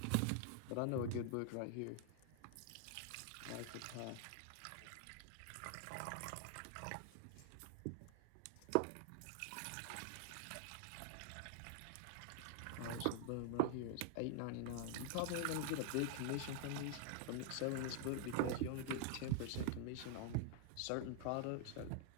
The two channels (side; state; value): both; different; correlation 0.00